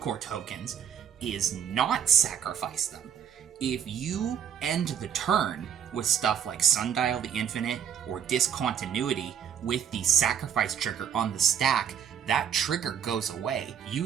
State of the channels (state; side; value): quieter; left; 8.5 dB